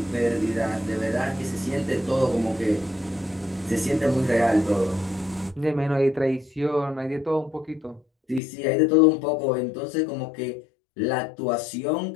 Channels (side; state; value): right; drops out; at 8.4 s